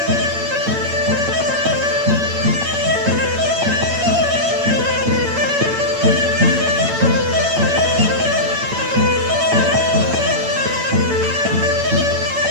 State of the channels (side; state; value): left; late; 8.9 ms